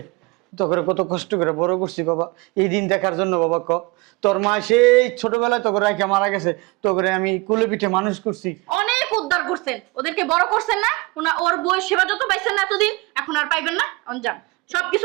তো করে কত কষ্ট করে বড় করছি বাবা, এই দিন দেখার জন্য। বাবা ক, তোর মা সেই ছোটবেলায় তোকে রাখা মারা গেছে, তোকে আমি কুলে পিঠে মানুষ করছি। অনেক উদ্ধার করছেন, ওদেরকে বড় করছেন না? ওর বই সেবা যত পাইছেন না এতদিন, এখন আর পাইবেন না। যান,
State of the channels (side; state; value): left; quieter; 25.1 dB